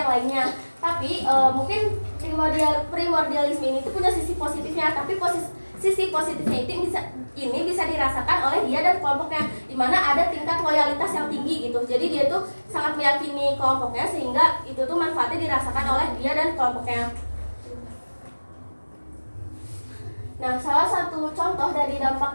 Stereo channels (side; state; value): both; inverted; correlation -1.00